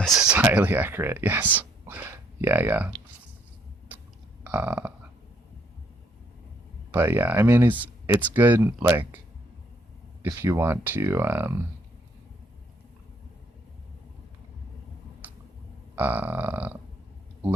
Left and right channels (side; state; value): both; normal; correlation 0.68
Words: is highly accurate. Yes. Yeah, yeah. But yeah, I mean, it's good. Like, if you want to